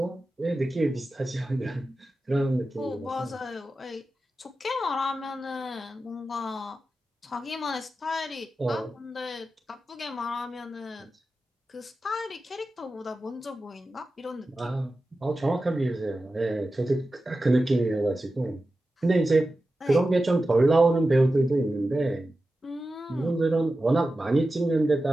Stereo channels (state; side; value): normal; both; correlation 0.93